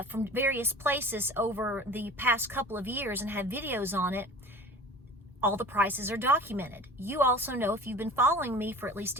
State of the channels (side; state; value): both; normal; correlation 0.39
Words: various places over the past couple of years and have videos on it, all the prices are documented. You also know, if you've been following me for at least